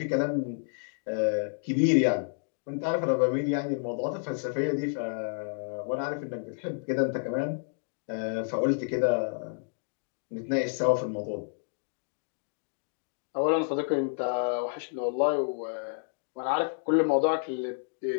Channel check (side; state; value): right; silent; digital silence